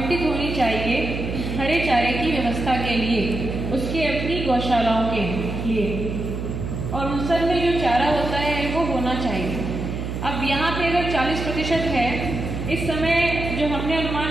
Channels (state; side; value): noise; right; hum, 5 dB below the sound